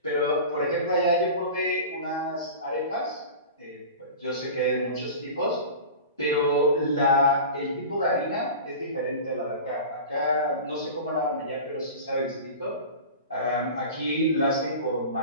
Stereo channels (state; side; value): inverted; both; correlation -0.34